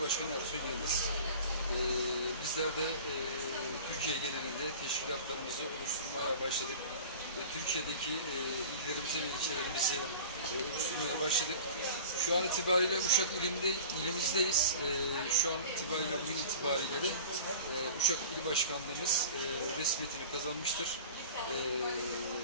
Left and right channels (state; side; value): inverted; both; correlation -0.39